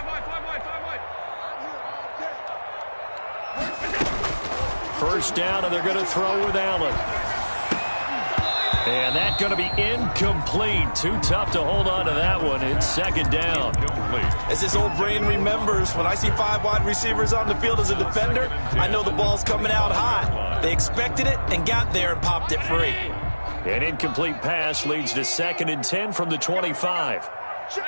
First down, and they're going to throw with Allen. And that's going to be incomplete. Too tough to hold on to that one. It's 2nd down. As this old brain remembers, when I see 5 wide receivers on the field as a defender, I know the ball's coming out hot. They expected it and got there and popped it free. An incomplete pass leads to 2nd and 10 from the 25.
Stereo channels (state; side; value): inverted; both; correlation -1.00